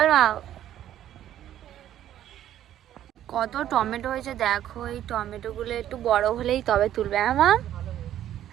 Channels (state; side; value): quieter; left; 11.7 dB